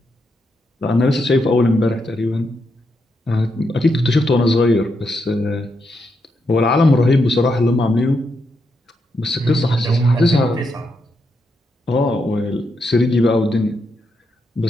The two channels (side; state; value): both; normal; correlation 0.82